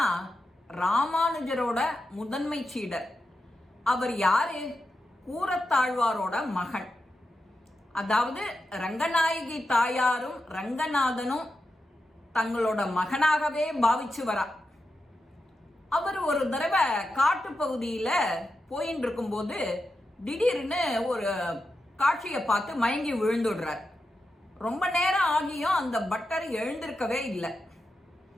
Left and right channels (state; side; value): normal; both; correlation 0.89